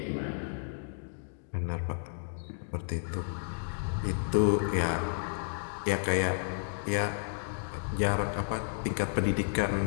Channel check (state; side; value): silent; right; digital silence